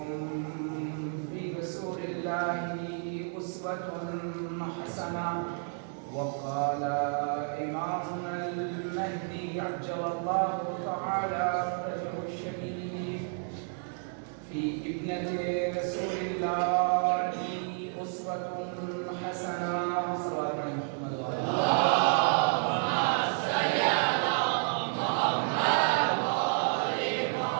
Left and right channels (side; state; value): left; silent; 57 dB below the other